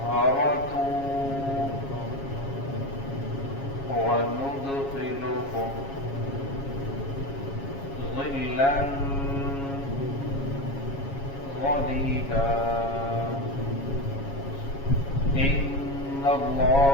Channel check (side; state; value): right; late; 7.3 ms